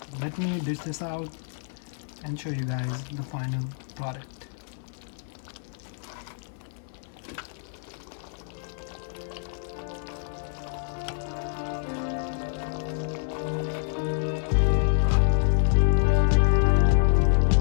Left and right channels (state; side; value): silent; right; digital silence